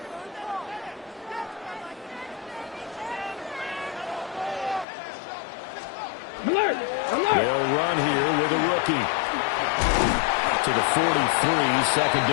Alert! Alert! They'll run here with a rookie. To the 43, second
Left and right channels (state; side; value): drops out; right; at 4.9 s